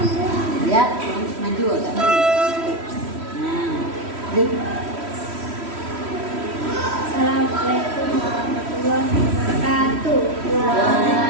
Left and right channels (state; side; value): late; left; 3.1 ms